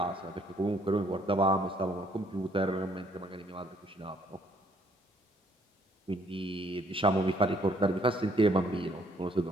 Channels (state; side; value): normal; both; correlation 0.64